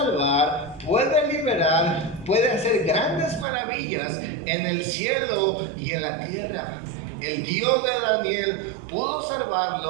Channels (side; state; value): left; drops out; at 3.5 s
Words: puede liberar, puede hacer grandes maravillas en el cielo y en la tierra. El Dios de Daniel pudo